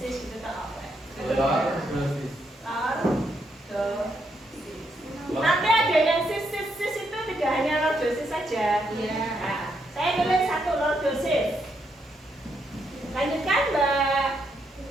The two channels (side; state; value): both; normal; correlation 0.78